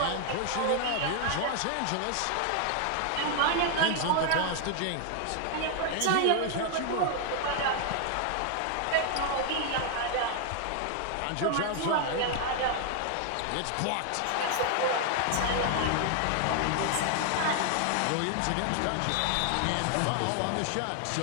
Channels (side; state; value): both; different; correlation 0.00